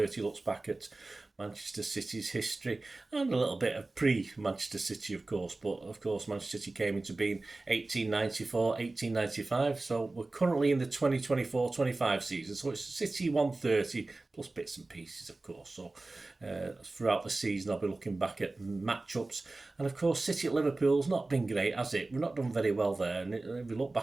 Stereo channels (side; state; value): left; quieter; 3.2 dB